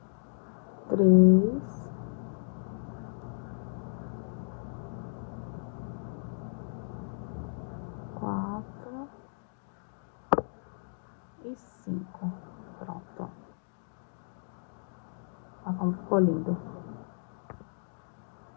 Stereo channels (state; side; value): silent; right; digital silence